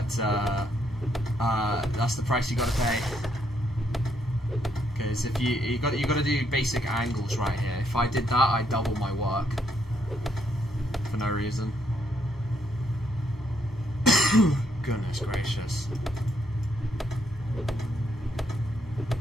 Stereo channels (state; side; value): normal; both; correlation 0.74